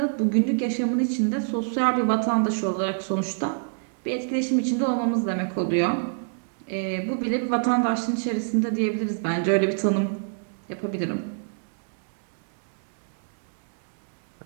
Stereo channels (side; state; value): left; silent; digital silence